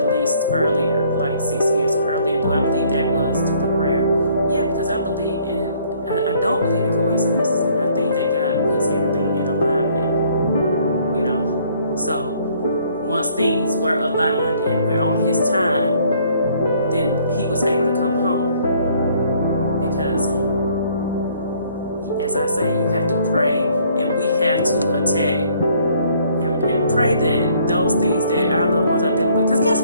earlier, like 6 years earlier. Do I believe that was through the prayer? Yeah, because I believe I don't believe in coincidences. And I think that God puts everything in alignment. So once things were aligned and we're on his time, then he was able to come home. Because, as I say, you have to pray, and we have to attack and pray that those things that our loved ones are dealing with. Because guess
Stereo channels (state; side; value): inverted; both; correlation -0.62